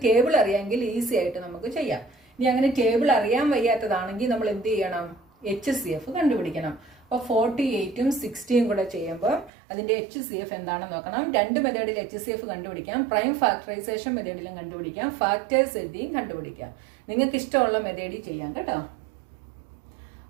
ടേബിൾ അറിയാമെങ്കിൽ ഈസി ആയിട്ട് നമുക്ക് ചെയ്യാം. ഇനി അങ്ങനെ ടേബിൾ അറിയാൻ വയ്യാത്തതാണെങ്കിൽ നമ്മൾ എന്ത് ചെയ്യണം? HCF കണ്ടുപിടിക്കണം. അപ്പോൾ 48ഉം 60ഉം കൂടെ ചെയ്യുമ്പോൾ അതിന്റെ HCF എന്താണെന്ന് നോക്കണം. 2 മെത്തേഡിൽ HCF കണ്ടുപിടിക്കാം. പ്രൈം ഫാക്ടറൈസേഷൻ മെത്തേഡിലും കണ്ടുപിടിക്കാം. ഫാക്ടേഴ്സ് എഴുതിയും കണ്ടുപിടിക്കാം. നിങ്ങൾക്ക് ഇഷ്ടമുള്ള മെത്തേഡിൽ ചെയ്യാം കേട്ടോ.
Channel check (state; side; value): drops out; left; at 9.5 s